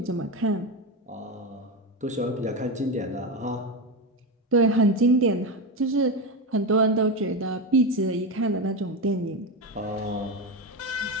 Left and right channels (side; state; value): both; normal; correlation 0.16